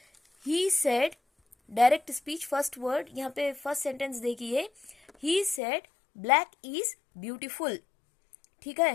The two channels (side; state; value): right; drops out; at 5.6 s